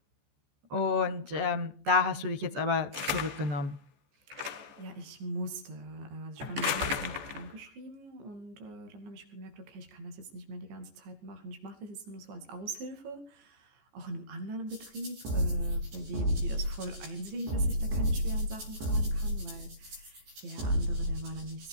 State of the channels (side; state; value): left; late; 14 ms